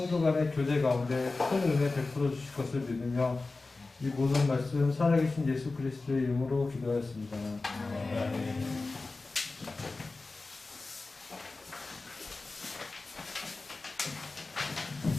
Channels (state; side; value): quieter; right; 3.5 dB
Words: 간의 교제 가운데 큰 은혜 베풀어 주실 것을 믿으며 이 모든 말씀 살아계신 예수 그리스도의 이름으로 기도하였습니다.